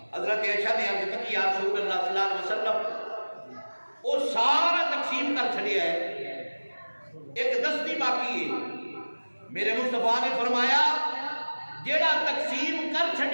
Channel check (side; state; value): both; inverted; correlation -1.00